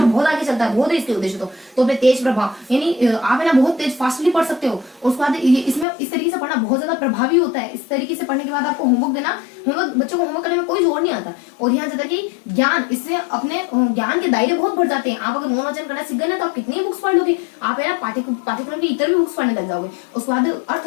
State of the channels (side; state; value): right; drops out; at 5.9 s